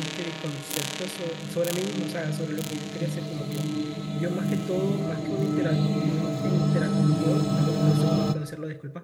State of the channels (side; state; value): both; identical; correlation 1.00